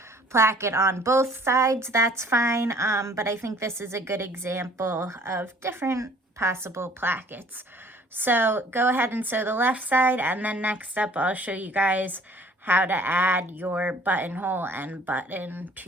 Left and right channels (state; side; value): normal; both; correlation 0.54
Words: placket on both sides. That's fine, but I think this is a good example of different possible plackets. So go ahead and sew the left side, and then next up I'll show you guys how to add your buttonhole and button